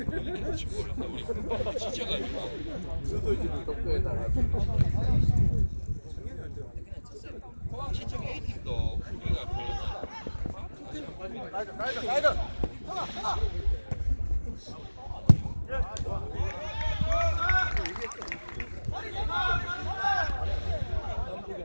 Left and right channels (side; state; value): both; inverted; correlation -1.00